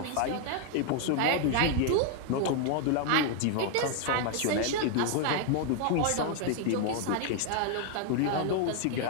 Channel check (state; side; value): different; both; correlation 0.00